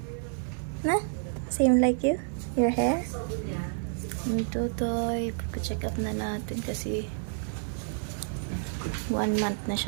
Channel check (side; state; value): left; silent; 58 dB below the other